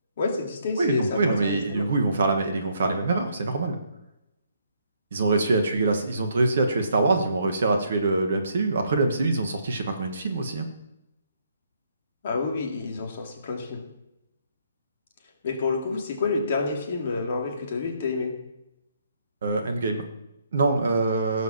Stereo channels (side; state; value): both; inverted; correlation -0.70